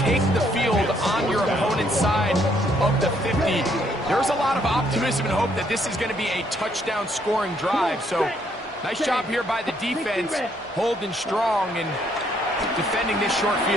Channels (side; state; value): both; normal; correlation 0.69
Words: the field on your opponent's side of the 50, there's a lot of optimism and hope that this is going to be a touchdown scoring drive. So nice job here by the defense, holding strong and defending this short